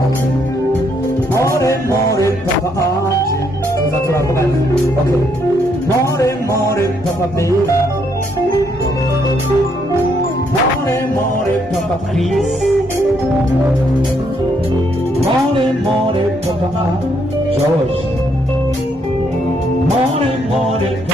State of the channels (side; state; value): both; normal; correlation 0.72